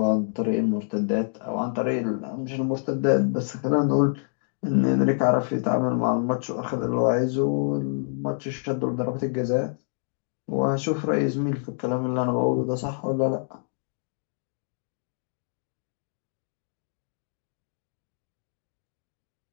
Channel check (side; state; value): right; silent; digital silence